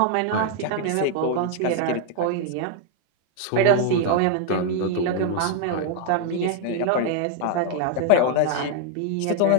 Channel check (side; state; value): both; different; correlation 0.00